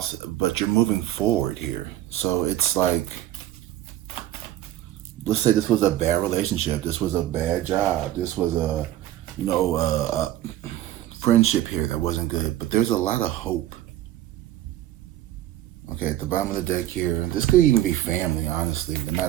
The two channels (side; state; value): left; quieter; 13.6 dB